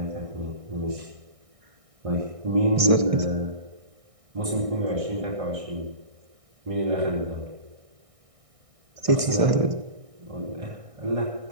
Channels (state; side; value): late; left; 1.6 ms